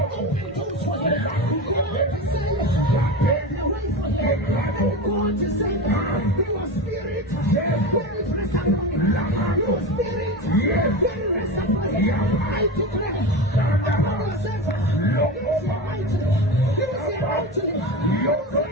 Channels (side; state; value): both; normal; correlation 0.24